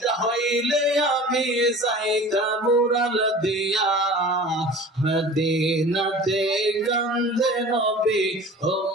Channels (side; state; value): both; normal; correlation 0.40